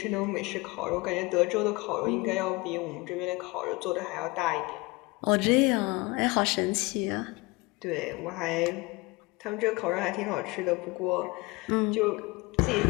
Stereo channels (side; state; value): right; quieter; 24.0 dB